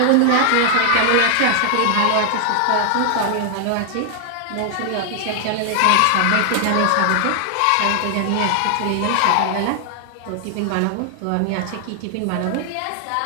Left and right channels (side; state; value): both; different; correlation 0.00